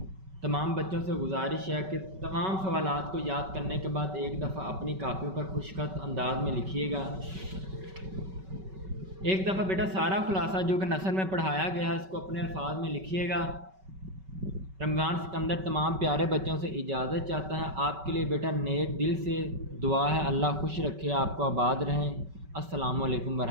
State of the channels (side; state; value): left; late; 5.3 ms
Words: تمام بچوں سے گزارش ہے کہ تمام سوالات کو یاد کرنے کے بعد ایک دفعہ اپنی کاپیوں پر خوشخط انداز میں لکھیے گا۔ ایک دفعہ بیٹا سارا خلاصہ جو کہ نثر میں پڑھایا گیا ہے اس کو اپنے الفاظ میں لکھیے گا۔ رمضان سکندر تمام پیارے بچوں سے اجازت چاہتا ہے۔ آپ کے لیے بیٹا نیک دل سے دعا ہے، اللہ خوش رکھے، آپ کو آباد رہیں۔ السلام علیکم